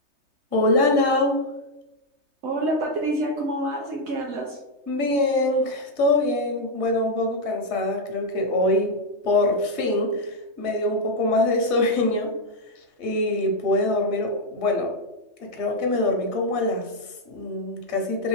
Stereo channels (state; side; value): late; left; 3.2 ms